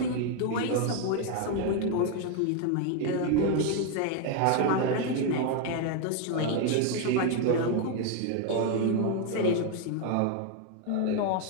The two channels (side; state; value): both; different; correlation 0.01